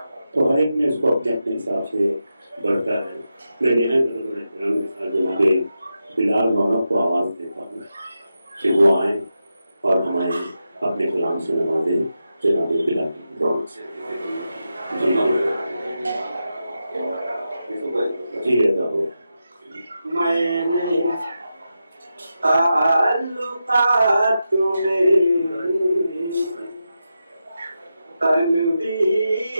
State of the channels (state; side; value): inverted; both; correlation -0.89